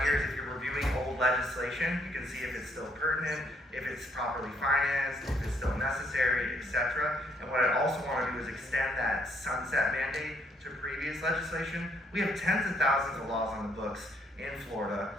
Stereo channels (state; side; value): normal; both; correlation 0.69